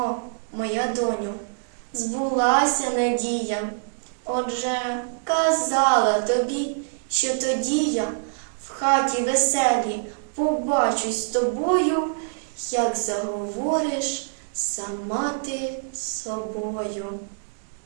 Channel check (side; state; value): left; silent; digital silence